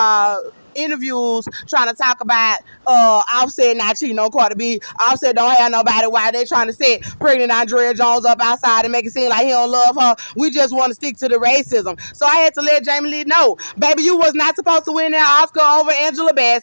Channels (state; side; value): inverted; both; correlation -1.00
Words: interviews trying to talk about Offset not cheating on Cardi B. Offset don't have nobody. Why they trying to set pregnant Andrea Jones up outside and make it seem like he don't love her? We just want to stick to the racism. So I had to let Jamie Lee know, baby, you was not supposed to win that Oscar over Angela